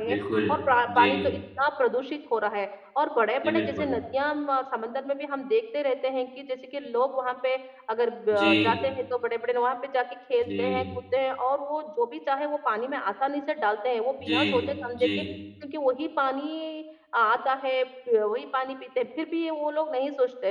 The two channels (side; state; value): both; identical; correlation 1.00